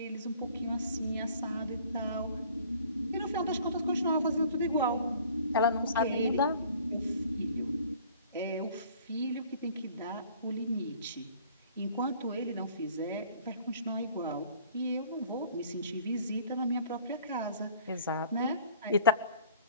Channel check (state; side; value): inverted; both; correlation -0.52